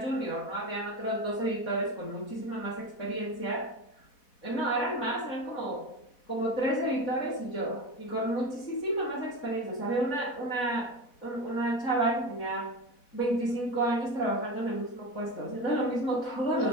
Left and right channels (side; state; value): right; late; 4.1 ms